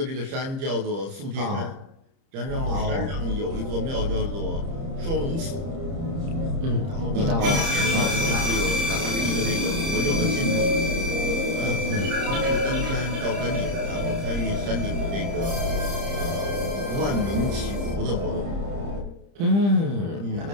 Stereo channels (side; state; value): left; late; 30 ms